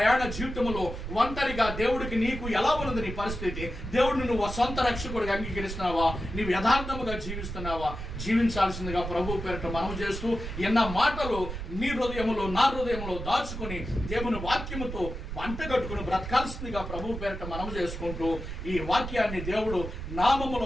జీవితంలో ఒంటరిగా దేవుడికి నీకు ఎలా ఉన్నది నీ పరిస్థితి? దేవుడిని నువ్వు సొంత రక్షకుడిగా అంగీకరిస్తున్నావా? నీవు యథార్థముగా జీవిస్తున్నావా? జీవించాల్సిందిగా ప్రభు పేరిట మనవి చేస్తూ ఎన్న మాటలు నీ హృదయములో, నా హృదయంలో దాచుకుని దేవుని వాక్యముతో వంటగట్టుకుని బ్రతకాల్సిందిగా ప్రభు పేరిట మనవి చేసుకుంటూ ఈ వాక్యాన్ని దేవుడు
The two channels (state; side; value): noise; right; rumble, 7 dB below the sound